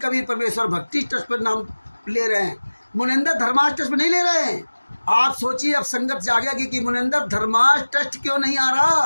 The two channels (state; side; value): inverted; both; correlation -1.00